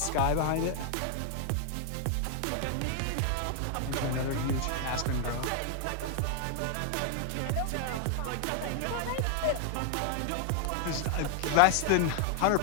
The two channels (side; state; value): both; different; correlation 0.00